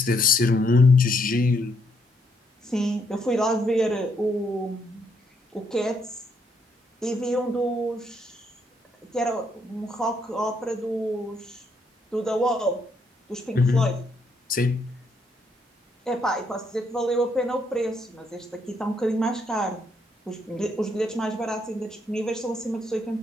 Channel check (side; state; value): both; normal; correlation 0.73